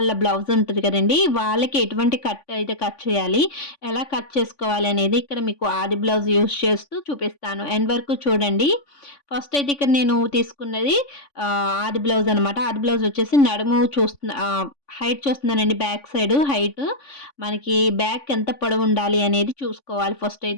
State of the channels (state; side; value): late; right; 3.5 ms